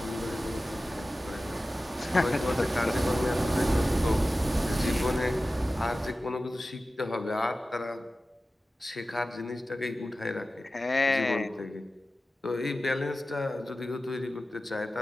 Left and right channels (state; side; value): normal; both; correlation 0.95